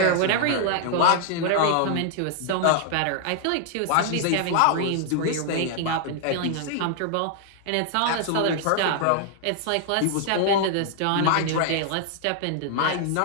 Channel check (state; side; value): different; both; correlation 0.00